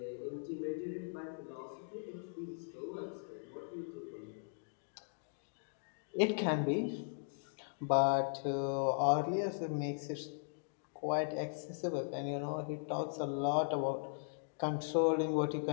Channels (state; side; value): silent; right; digital silence